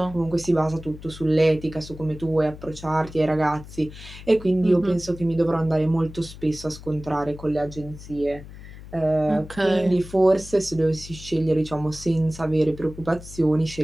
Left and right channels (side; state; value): left; noise; hum, 15 dB below the sound